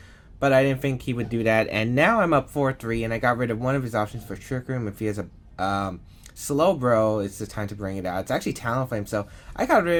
But I didn't think he would do that. And now I'm up 4-3, and I got rid of one of his options for Trick Room. If he has a Slowbro, it's the time to bring it out. It's actually Talonflame, so I got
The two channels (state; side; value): identical; both; correlation 1.00